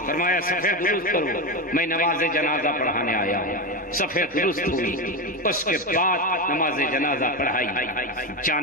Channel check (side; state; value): both; normal; correlation 0.16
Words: فرمایا صفحہ درست کرو، میں نماز جنازہ پڑھانے آیا ہوں۔ صفحہ درست ہوئی، اس کے بعد نماز جنازہ پڑھائی،